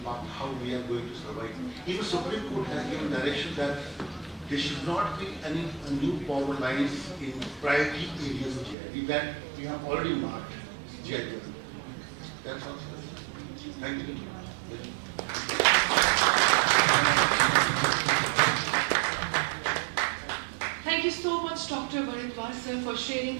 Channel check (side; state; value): left; drops out; at 8.8 s